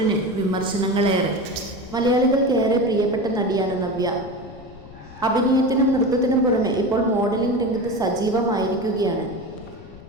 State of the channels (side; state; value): left; noise; rumble, 19 dB below the sound